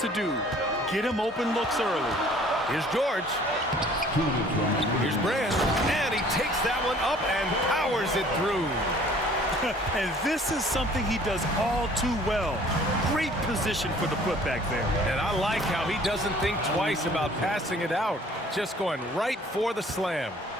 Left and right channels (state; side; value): normal; both; correlation 0.54